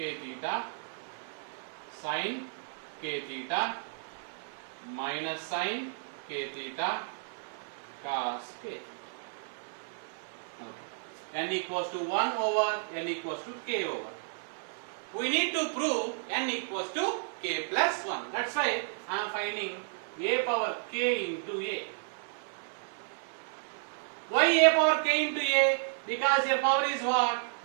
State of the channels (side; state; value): left; silent; digital silence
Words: theta, sin k theta, minus sin k theta, cos k. Okay. N equals to 1 over n equals to k over. We need to prove n equals to k plus 1. That's why I am finding A power k into A. Why A power k into A? Because your power is what?